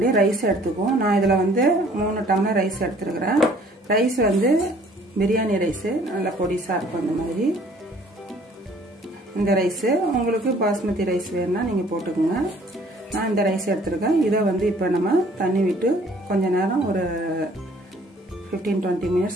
ரைஸ் எடுத்துக்குவோம். நான் இதில் வந்து 3 டம்ளர் ரைஸ் எடுத்துருக்கிறேன். ரைஸ் வந்து பிரியாணி ரைஸு நல்லா பொடிசாக இருக்கும். இந்த மாதிரி இந்த ரைஸு உங்களுக்கு பாஸ்மதி ரைஸ் வேணும்னா நீங்கள் போட்டுக்கோங்க. நான் இந்த ரைஸ் எடுத்துருக்கேன். இதை வந்து இப்போ நம்ம தண்ணி விட்டு கொஞ்ச நேரம் ஒரு 15-20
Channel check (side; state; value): both; normal; correlation 0.57